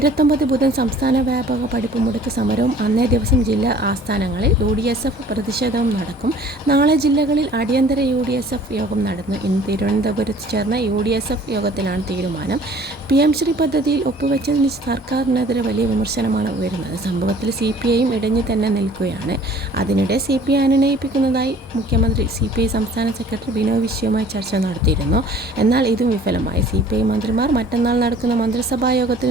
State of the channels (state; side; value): normal; both; correlation 0.51